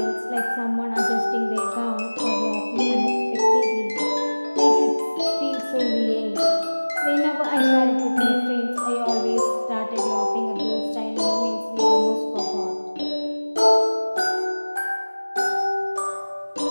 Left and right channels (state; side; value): inverted; both; correlation -1.00